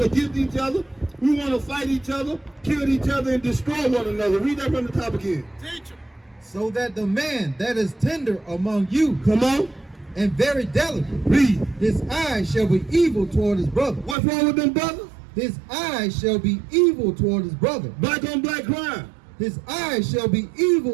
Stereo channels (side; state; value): left; drops out; at 14.2 s